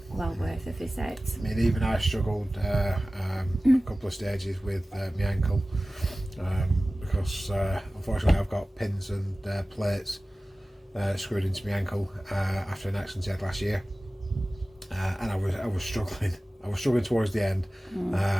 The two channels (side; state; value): both; normal; correlation 0.97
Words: a visit. I mean, even I struggled a couple of stages with my ankle, because unfortunately I've got pins and plates screwed into my ankle after an accident I had last year, and I was struggling. I was struggling towards the end,